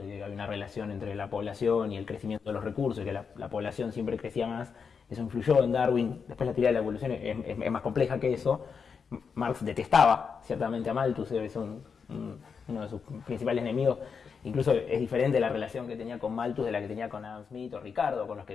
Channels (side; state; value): right; quieter; 6.0 dB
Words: de que hay una relación entre la población y el crecimiento de los recursos, y que la población siempre crecía más. Eso influyó en Darwin. Después la teoría de la evolución es más compleja que eso, Marx detestaba ciertamente a Malthus, es uno de sus principales enemigos. Incluso es diferente la relación que tenía con Malthus de la que tenía con Adam Smith o Ricardo, con los que